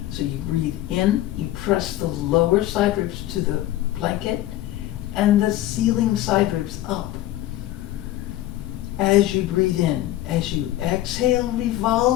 So you breathe in, you press the lower side ribs to the blanket and the ceiling side ribs up. As you breathe in, as you exhale,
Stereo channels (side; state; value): right; quieter; 14.7 dB